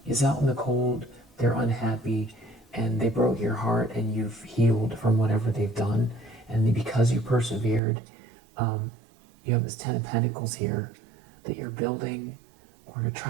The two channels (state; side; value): drops out; left; at 7.8 s